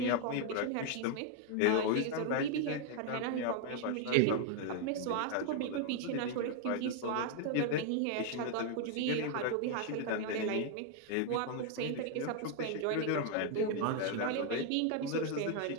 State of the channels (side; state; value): both; different; correlation 0.00